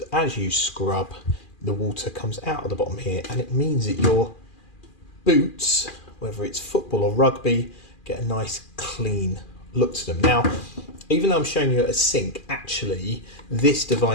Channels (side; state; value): right; late; 2.4 ms